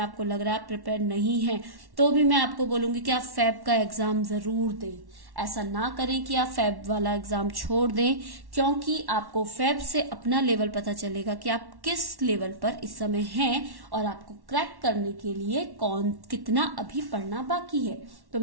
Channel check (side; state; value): left; late; 1.1 ms